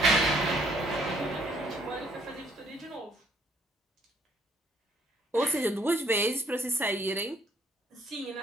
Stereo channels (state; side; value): normal; both; correlation 0.65